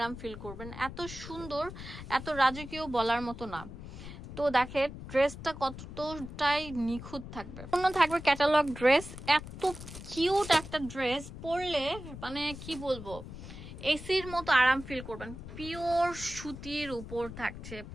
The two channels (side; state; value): left; noise; rumble, 12 dB below the sound